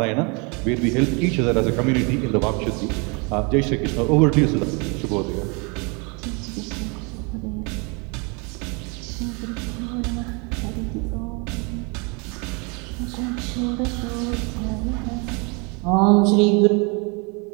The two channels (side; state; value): left; quieter; 32.0 dB